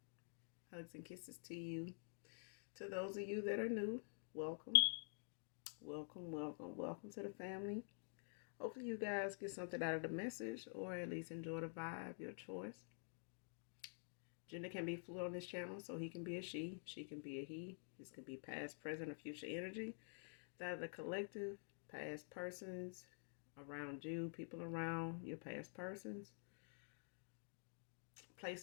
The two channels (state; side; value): silent; right; digital silence